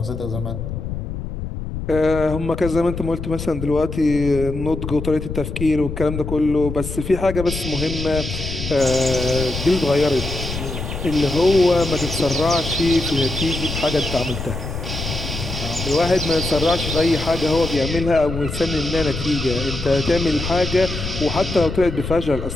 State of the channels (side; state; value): left; noise; rumble, 6 dB below the sound